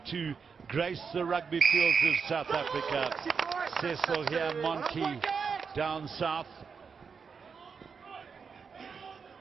to grace the rugby fields of South Africa. Cecil here, Monty down south.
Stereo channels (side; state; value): left; quieter; 5.8 dB